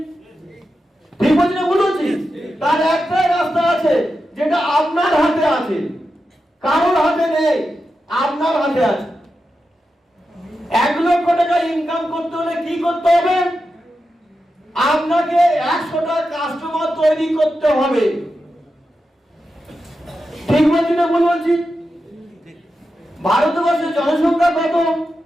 ঠিক বলছি না ভুল বলছি? তার একটাই রাস্তা আছে, যেটা আপনার হাতে আছে, কারোর হাতে নেই, আপনার হাতে আছে। 1 লক্ষ টাকা ইনকাম করতে হলে কি করতে হবে? আপনাকে 100টা কাস্টমার তৈরি করতে হবে। ঠিক বলছি না ভুল বলছি? ভারতবর্ষের জনসংখ্যা কত?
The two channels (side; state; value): both; normal; correlation 0.89